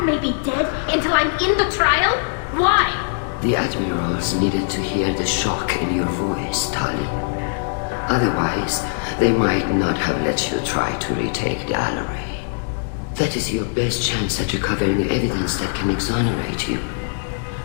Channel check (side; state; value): right; silent; 65 dB below the other